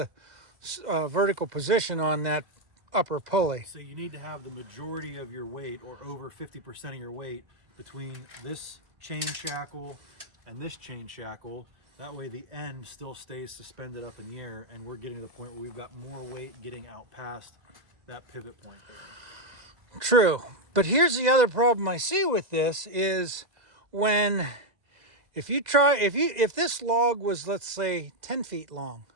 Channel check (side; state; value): left; late; 2.0 ms